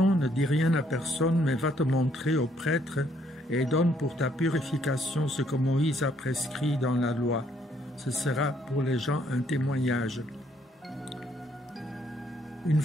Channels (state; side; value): normal; both; correlation 0.69